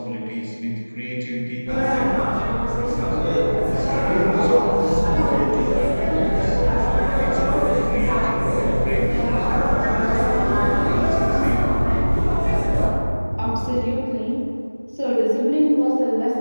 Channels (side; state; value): both; inverted; correlation -1.00